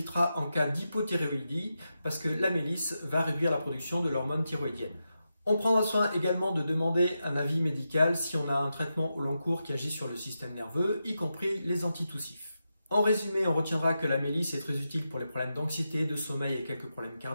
en cas d'hypothyroïdie parce que la mélisse va réduire la production de l'hormone thyroïdienne. On prendra soin également de demander un avis médical si on a un traitement au long cours qui agit sur le système nerveux, y compris les antitussifs. En résumé, on retiendra que la mélisse est très utile pour les problèmes d'anxiété, de sommeil et quelques problèmes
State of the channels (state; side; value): inverted; both; correlation -0.88